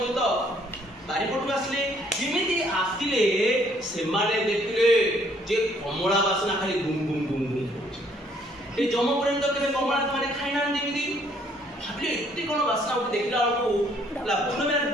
ବାରିପଟକୁ ଆସିଲେ ଯେମିତି ଆସିଲେ ସେମାନେ ଦେଖିଲେ ଯେ କମଳା ବାସନା ଖାଲି ଗୁମ ଗୁମ ଗୁମ ଗୁମ କରୁଛି। ଏ ଯମ ପର୍ଯ୍ୟନ୍ତ କେବେ କମଳା ସେମାନେ ଖାଇନାହାନ୍ତି ଏମିତି ଭାବିଲେ ଏତେ କଣ ବାସନା ଗୋଟେ ଦେଖିଲା ବେଳକୁ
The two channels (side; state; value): both; normal; correlation 0.64